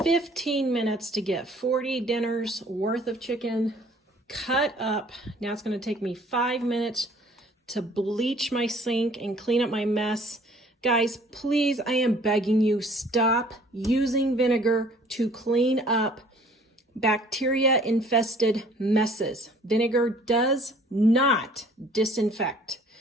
minutes to get 40 dinners worth of chicken cut up. Now it's gonna take me 5 minutes to bleach my sink and clean up my mess. Guys, please, I am begging you, stop using vinegar to clean up bacteria-infested messes. Vinegar does not disinfect.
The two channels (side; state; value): both; normal; correlation 0.55